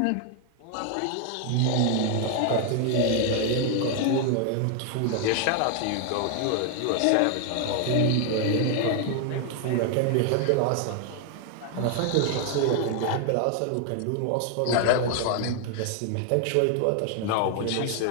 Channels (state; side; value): different; both; correlation 0.00